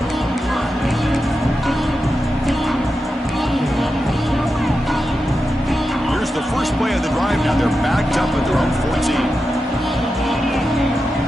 Here's the first play of the drive. Now they're backed up at their own 14.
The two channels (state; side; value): normal; both; correlation 0.90